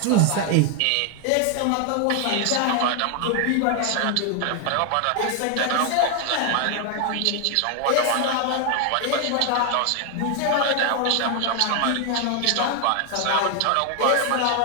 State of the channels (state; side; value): different; both; correlation 0.00